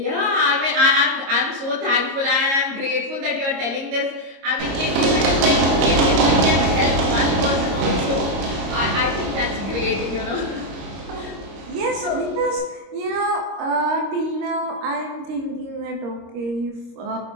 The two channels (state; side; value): late; left; 26 ms